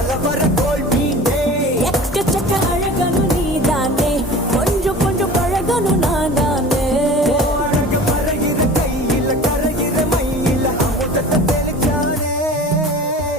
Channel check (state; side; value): normal; both; correlation 0.40